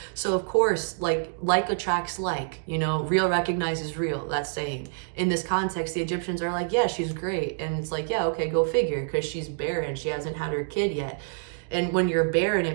So of course, like attracts like, real recognizes real, that saying. In this context, the Egyptians are like, yeah, she's great. And it's like, yeah, okay, go figure, because she's barren. She hasn't had her kid yet. And when you're barren,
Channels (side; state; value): left; silent; digital silence